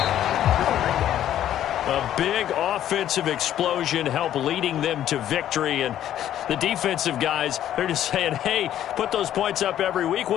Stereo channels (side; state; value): right; quieter; 11.5 dB